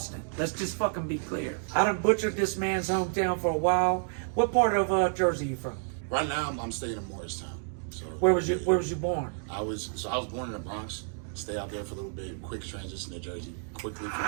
Let's just fucking be clear. I done butchered this man's hometown for a while. What part of Jersey you from? Right now, I'm staying in Morristown. So Where was you born? I was born in the Bronx. Stay out there for a little bit. Quick transition to Jersey. Quickly from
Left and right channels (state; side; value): silent; left; digital silence